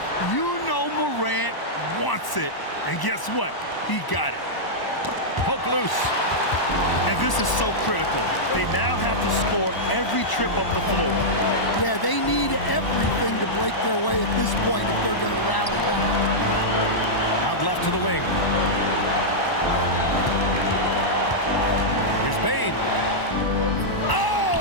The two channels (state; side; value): late; right; 1.0 ms